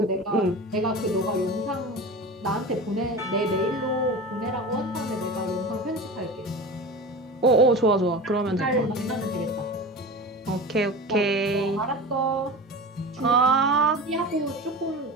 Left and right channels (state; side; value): normal; both; correlation 0.31